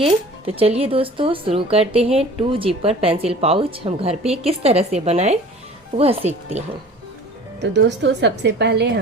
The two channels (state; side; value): normal; both; correlation 0.44